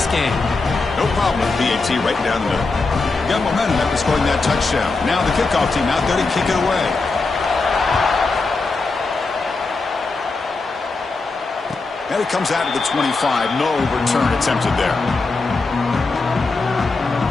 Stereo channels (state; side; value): quieter; right; 3.8 dB